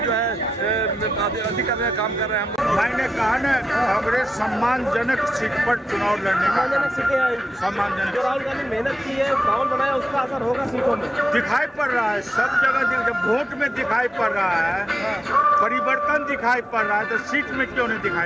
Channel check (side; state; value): both; normal; correlation 0.89